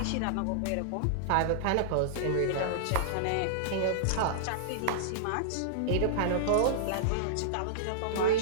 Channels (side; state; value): both; different; correlation -0.02